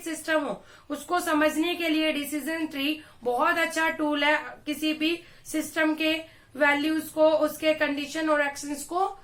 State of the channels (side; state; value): both; identical; correlation 1.00